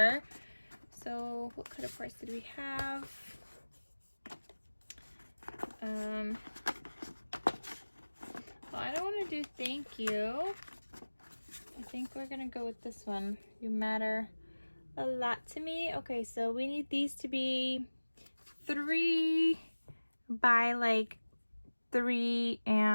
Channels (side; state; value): both; inverted; correlation -1.00